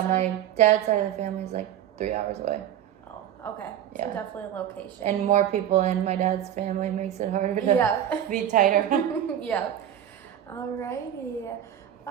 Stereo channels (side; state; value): left; quieter; 10.6 dB